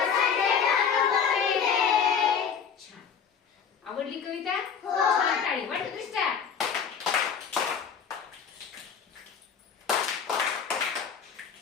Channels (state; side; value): quieter; right; 6.8 dB